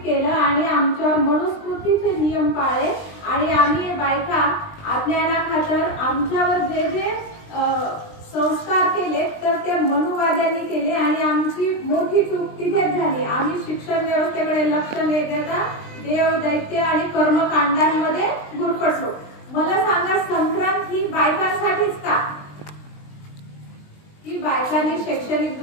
केलं आणि आमच्यावर मनुस्मृतीचे नियम पाळले आणि आम्ही बायका अज्ञानाखातर आमच्यावर जे जे संस्कार केले तर ते मनुवाद्यांनी केले आणि आमची मोठी चूक तिथेच झाली। आम्ही शिक्षण व्यवस्थेकडे लक्ष न देता देव, दैत्य आणि कर्मकांडांमध्ये गुरफटलो। मला सांगा, संक्रांत ही बायकांसाठीच का? की बायकांनी शैक्षणिक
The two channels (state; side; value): late; right; 20 ms